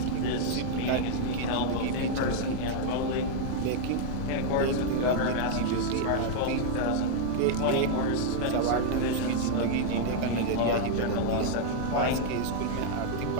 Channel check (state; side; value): different; both; correlation 0.00